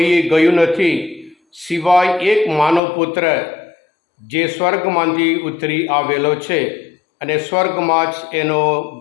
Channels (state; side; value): drops out; right; at 2.8 s